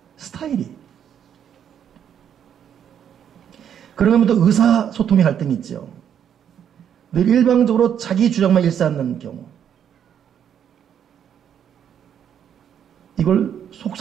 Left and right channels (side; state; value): left; quieter; 8.9 dB